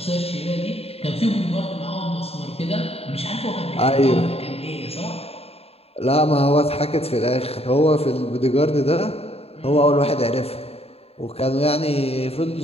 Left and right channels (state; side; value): late; right; 0.29 ms